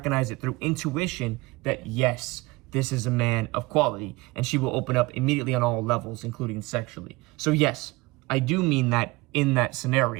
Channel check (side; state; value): left; quieter; 22.4 dB